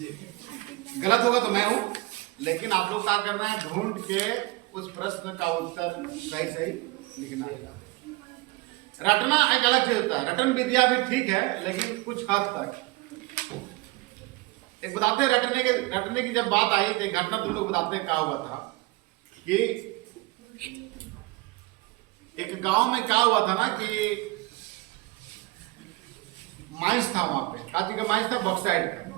गलत होगा तो मैं हूं, लेकिन आप लोग क्या करना है, ढूंढ के उस प्रश्न का उत्तर सही लिखना है। रटना एक अलग चीज होता है, रटन विद्या भी ठीक है, लेकिन कुछ हद तक। एक बताते रटने की जब बात आई तो घटना तुम लोग बताते हैं क्या हुआ था कि एक गांव में क्या हुआ था ना कि माइंस था, वहां पे काची का माइंस था, बॉक्साइड का।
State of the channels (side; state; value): left; quieter; 22.7 dB